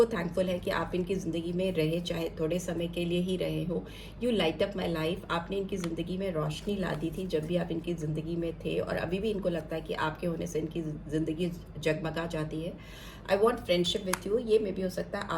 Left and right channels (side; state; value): both; identical; correlation 1.00